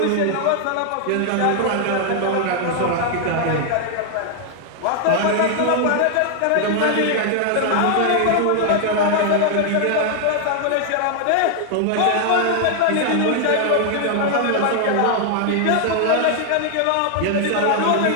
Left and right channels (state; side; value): different; both; correlation 0.00